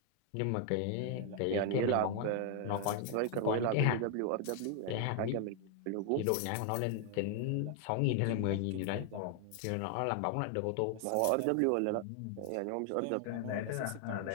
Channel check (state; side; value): different; both; correlation 0.00